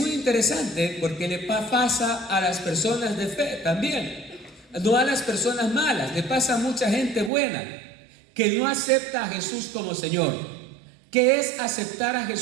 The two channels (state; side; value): drops out; left; at 7.3 s